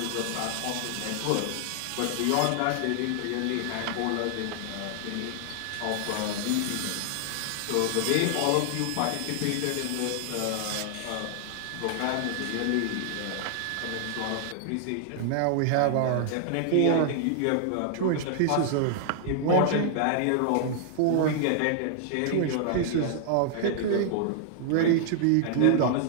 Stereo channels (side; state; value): both; different; correlation -0.01